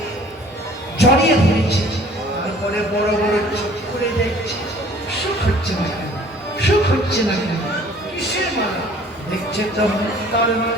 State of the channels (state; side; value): normal; both; correlation 0.52